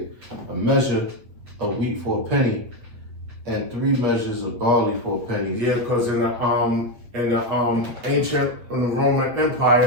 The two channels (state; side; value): late; left; 8.6 ms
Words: a measure of wheat for a penny, and 3 measures of barley for a penny. Yeah, because in the Roman